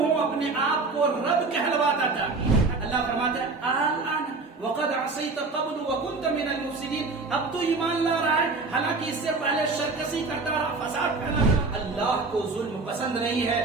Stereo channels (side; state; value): left; quieter; 3.8 dB